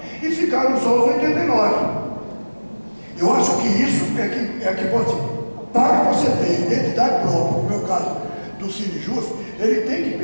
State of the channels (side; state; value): both; inverted; correlation -1.00